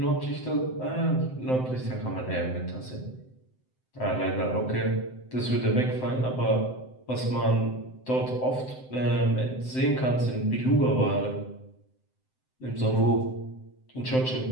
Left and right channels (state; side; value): late; right; 7.8 ms